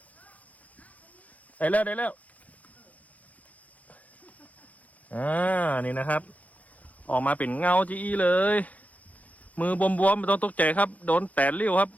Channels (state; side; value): late; right; 0.072 ms